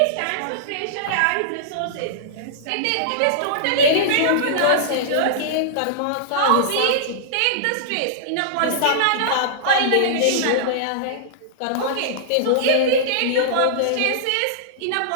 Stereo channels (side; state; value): both; different; correlation -0.02